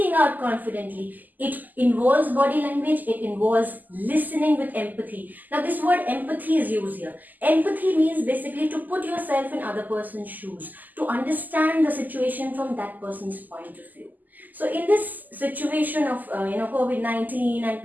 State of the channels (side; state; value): left; late; 0.084 ms